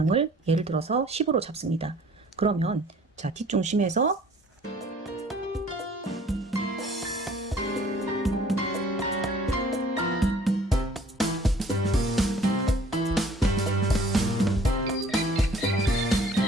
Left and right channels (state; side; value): normal; both; correlation 0.54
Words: 예를 들어서 10으로 잡습니다. 그러면 자, 뒷중심에서